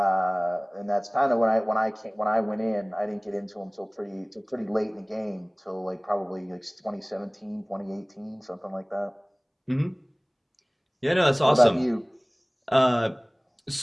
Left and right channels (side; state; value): both; identical; correlation 1.00